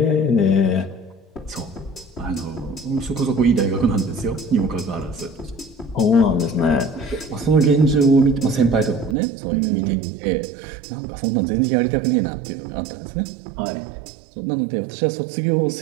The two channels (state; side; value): drops out; left; at 9.2 s